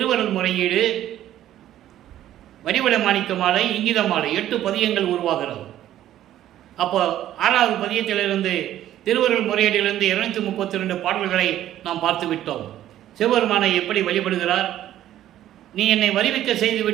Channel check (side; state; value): left; quieter; 12.5 dB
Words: முறையீடு, வடிவட மாணிக்க மாலை, இங்கித மாலை, 8 பதியங்கள் உருவாகிறது. அப்போ 6வது பதியத்திலிருந்து திருவருள் முறையீட்டிலிருந்து 232 பாடல்களை நாம் பார்த்து விட்டோம். சிவபெருமானை எப்படி வழிபடுகிறார்? நீ என்னை வருவிக்க